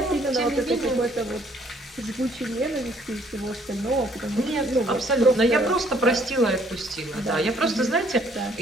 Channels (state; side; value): normal; both; correlation 0.63